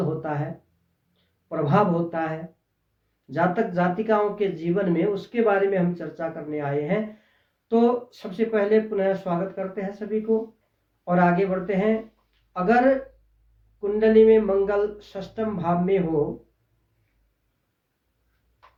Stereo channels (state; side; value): identical; both; correlation 1.00